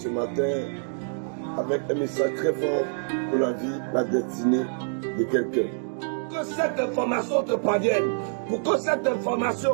matin avec un message très fort pour la vie, la destinée de quelqu'un. Que cette information te parvienne, pour que cette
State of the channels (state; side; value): silent; left; digital silence